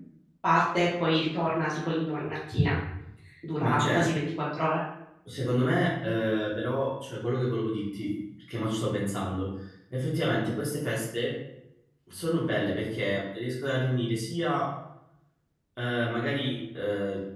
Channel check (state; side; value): identical; both; correlation 1.00